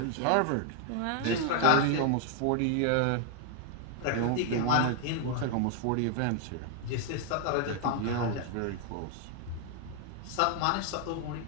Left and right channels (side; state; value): both; different; correlation 0.00